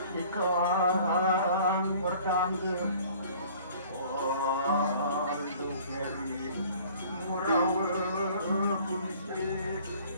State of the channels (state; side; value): inverted; both; correlation -0.51